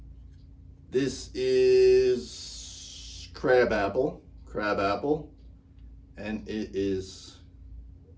This is crab apple, and it is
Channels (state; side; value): identical; both; correlation 1.00